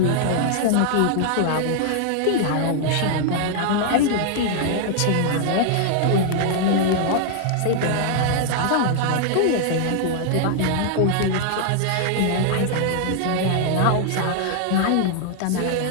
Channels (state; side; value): different; both; correlation 0.00